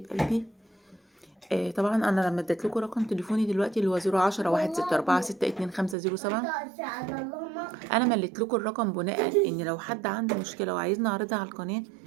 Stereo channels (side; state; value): left; drops out; at 6.0 s